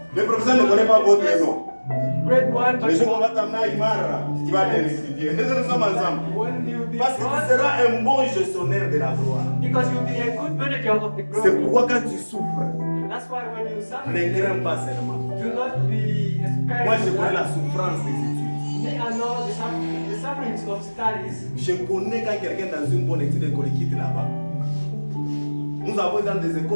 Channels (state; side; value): inverted; both; correlation -1.00